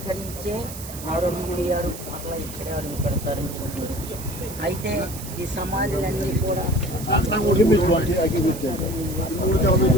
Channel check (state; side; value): noise; right; hiss, 12 dB below the sound